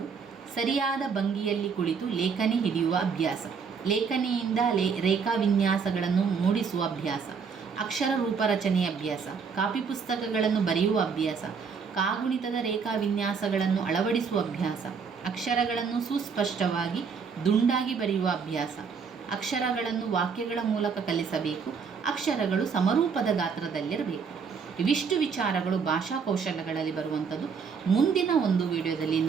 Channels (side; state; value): left; quieter; 5.8 dB